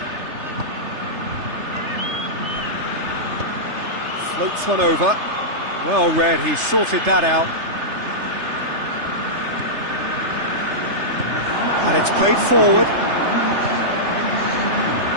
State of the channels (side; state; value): left; late; 3.3 ms